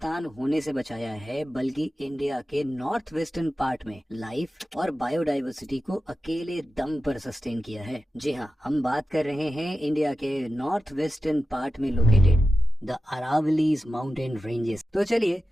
होने से बचाया है बल्कि इंडिया के नॉर्थ वेस्टर्न पार्ट में लाइफ और बायोडाइवर्सिटी को अकेले दम पर सस्टेन किया है। जी हाँ, हम बात कर रहे हैं इंडिया के नॉर्थ वेस्टर्न पार्ट में located the Aravallis mountain ranges. तो चलिए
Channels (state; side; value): normal; both; correlation 0.92